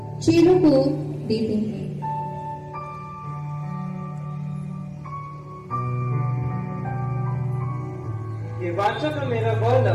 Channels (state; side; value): identical; both; correlation 1.00